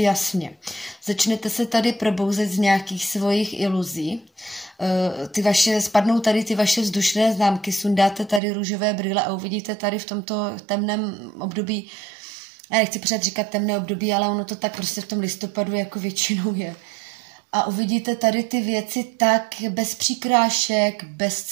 Začnete se tady probouzet z nějakých svojich iluzí. Spadnou tady ty vaše vzdušné známky, sundáte tady růžové brýle a uvidíte tady v tomto temném období, já nechci pořád říkat temné období, ale ono to tak prostě v tom listopadu jako většinou je. A uvidíte tady ty věci tak bez přikrášek, bez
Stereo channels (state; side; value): drops out; left; at 8.4 s